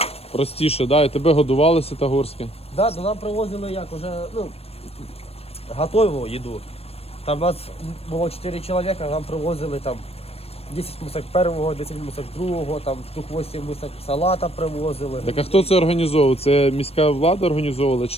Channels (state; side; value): late; right; 0.29 ms